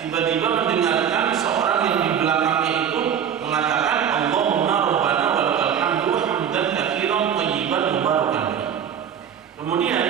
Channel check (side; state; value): left; quieter; 8.5 dB